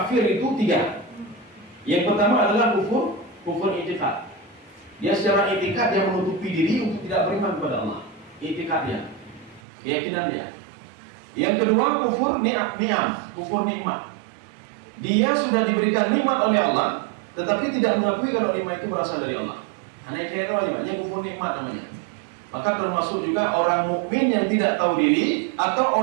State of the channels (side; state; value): left; drops out; at 9.6 s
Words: itu 3. Yang pertama adalah kufur i'tiqad. Dia secara i'tiqad dia menutupi diri untuk tidak beriman kepada Allah. I'tiqadnya, keyakinan dia. Yang kedua kufur ni'am, kufur nikmat. Dia sudah diberikan nikmat oleh Allah, tetapi tidak mengakui kalau nikmat itu berasal dari Allah. Hanya kira aja, kufur nikmat namanya. Maka termasuk juga orang mukmin yang tidak tahu diri